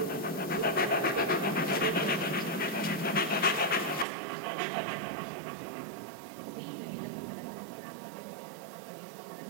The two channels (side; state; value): left; drops out; at 4.0 s